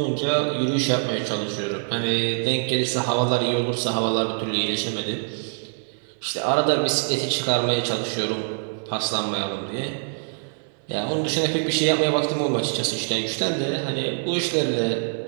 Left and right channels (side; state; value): left; silent; 59 dB below the other